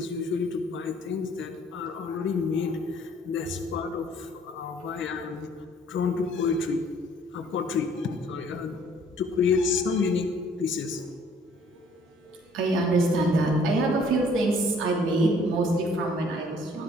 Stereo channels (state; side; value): normal; both; correlation 0.58